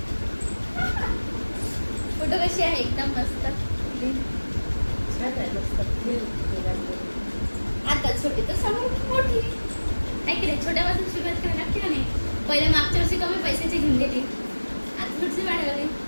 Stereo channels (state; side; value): inverted; both; correlation -1.00